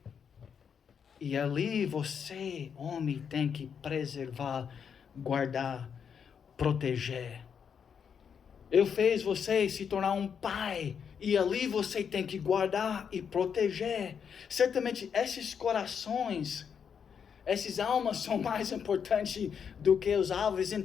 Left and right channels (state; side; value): quieter; right; 7.2 dB